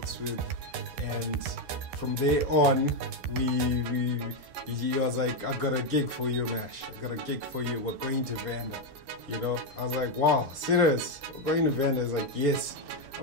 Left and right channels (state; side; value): late; left; 13 ms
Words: with. And from there on, he was like, I got a gig for you, Mash, I got a gig for you, we're going to Vanda, you know. I was like, wow, serious, we're going to Vanda? He's like, yes.